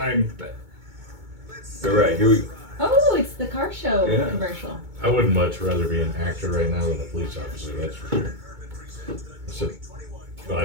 All right, here we go. Oh, it's the car show Yeah. commercial. I would much rather be an actor right now than a police officer, that's for sure. But I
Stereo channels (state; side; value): late; left; 2.2 ms